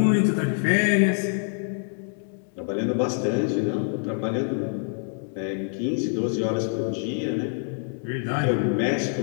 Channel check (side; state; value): right; silent; 57 dB below the other